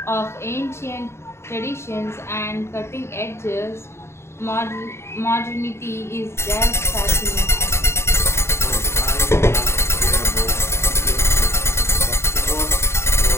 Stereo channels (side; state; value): right; late; 0.13 ms